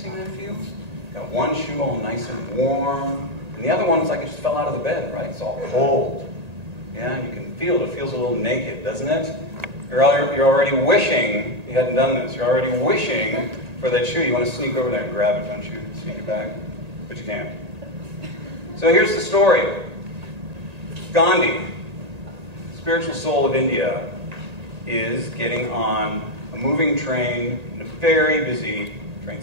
that feels? Got one shoe all nice and warm, and the other one's like it just fell out of the bed, right? It's all cold. Yeah, you can feel it. It feels a little naked, doesn't it? You're already wishing you hadn't done this. You're already wishing for that shoe. You want to sneak over there and grab it, don't you? Sneak it back, but you can't. So here's the story. Gandhi, spiritual soul of India, is getting on a moving train in a very busy train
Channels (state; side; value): late; left; 1.8 ms